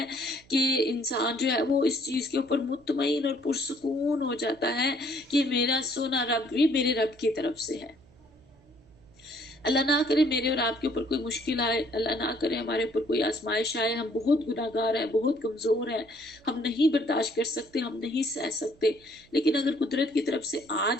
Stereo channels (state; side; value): noise; right; hum, 28 dB below the sound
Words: کہ انسان جو ہے وہ اس چیز کے اوپر مطمئن اور پرسکون ہو جاتا ہے کہ میرا سونا رب بھی میرے رب کی طرف سے ہے۔ اللہ نہ کرے میرے اور آپ کے اوپر کوئی مشکل آئے، اللہ نہ کرے ہمارے اوپر کوئی آزمائش آئے، ہم بہت گناہ گار ہیں، بہت کمزور ہیں، ہم نہیں برداشت کر سکتے، ہم نہیں سہ سکتے، لیکن اگر قدرت کی طرف سے آ